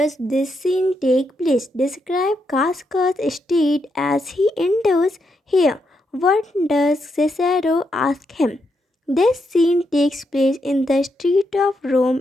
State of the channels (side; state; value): both; normal; correlation 0.81